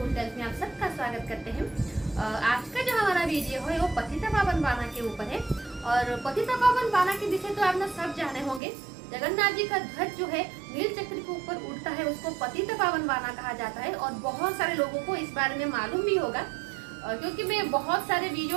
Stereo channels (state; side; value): drops out; left; at 8.6 s